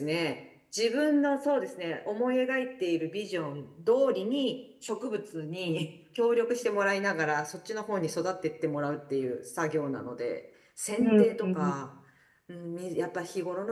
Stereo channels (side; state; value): both; identical; correlation 1.00